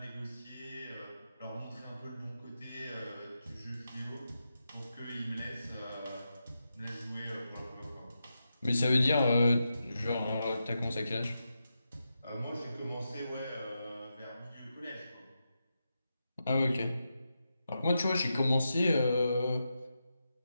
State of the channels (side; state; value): both; inverted; correlation -0.88